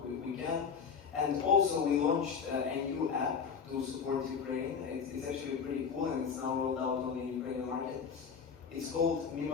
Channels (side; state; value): right; quieter; 6.3 dB